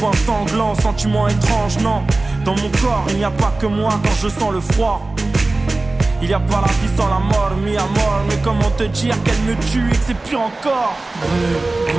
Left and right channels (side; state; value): left; quieter; 3.1 dB